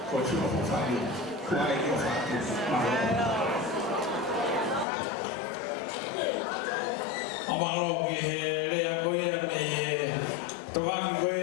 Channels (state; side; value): drops out; right; at 4.9 s